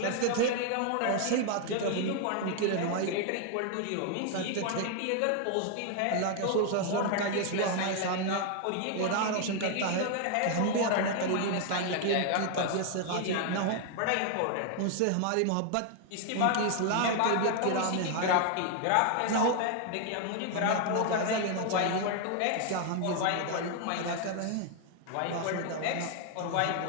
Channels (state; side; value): different; both; correlation 0.00